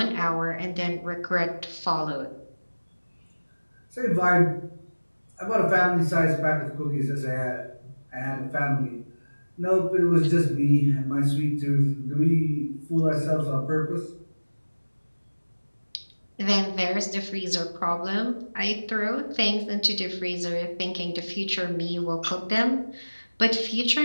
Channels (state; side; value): inverted; both; correlation -1.00